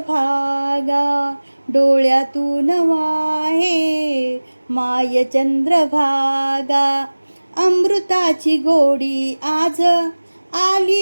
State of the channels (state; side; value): inverted; both; correlation -1.00